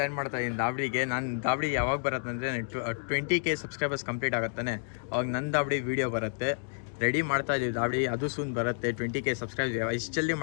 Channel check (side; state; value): right; silent; digital silence